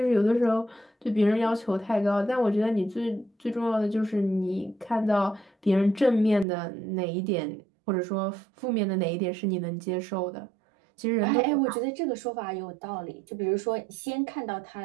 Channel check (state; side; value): drops out; left; at 6.5 s